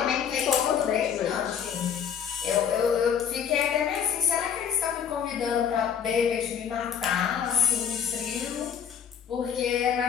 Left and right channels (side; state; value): right; quieter; 7.9 dB